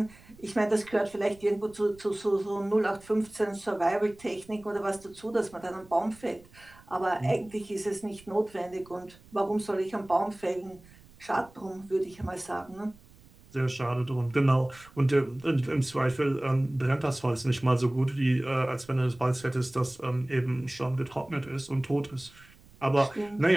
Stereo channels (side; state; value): right; noise; rumble, 25 dB below the sound